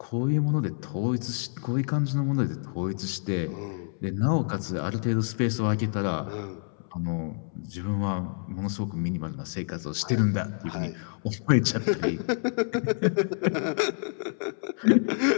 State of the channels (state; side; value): silent; right; 59 dB below the other